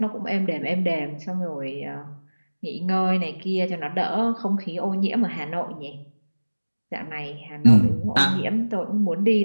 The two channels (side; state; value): both; inverted; correlation -1.00